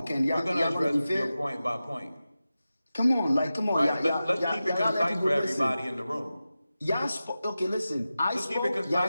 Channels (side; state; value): both; inverted; correlation -0.94